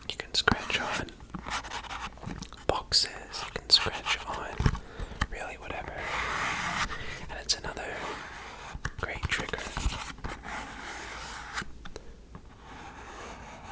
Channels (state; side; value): identical; both; correlation 1.00